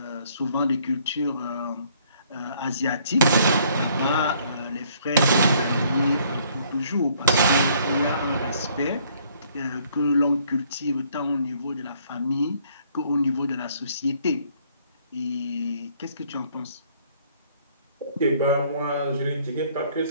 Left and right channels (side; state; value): both; inverted; correlation -0.63